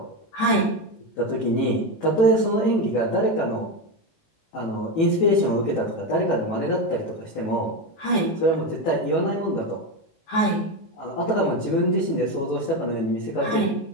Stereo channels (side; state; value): right; late; 18 ms